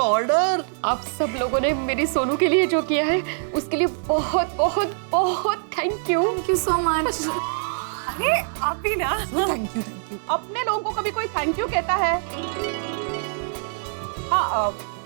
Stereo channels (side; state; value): left; silent; 58 dB below the other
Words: ऑर्डर। आप सब लोगों ने मेरी सोनू के लिए जो किया है, उसके लिए बहुत बहुत बहुत thank you. Thank you so much. अरे आप भी ना। Thank you. अपने लोगों को कभी कोई थैंक यू कहता है? हाँ,